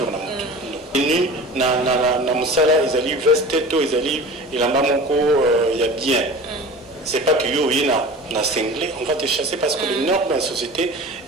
na moto ni na musala ils allaient veste to ils allaient il en bas moko il y a bien c'est pas que yo yina na cinglé on va te chasser parce que le nord de la société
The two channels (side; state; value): both; normal; correlation 0.37